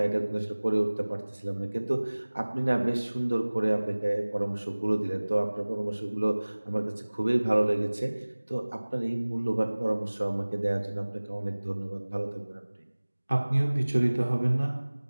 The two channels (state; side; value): inverted; both; correlation -1.00